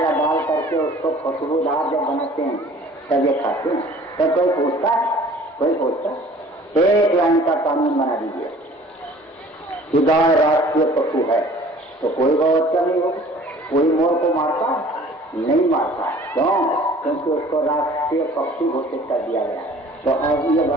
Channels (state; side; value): normal; both; correlation 0.50